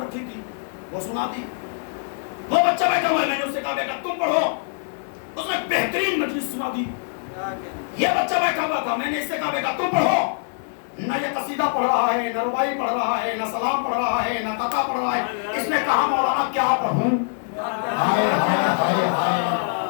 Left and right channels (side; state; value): right; silent; digital silence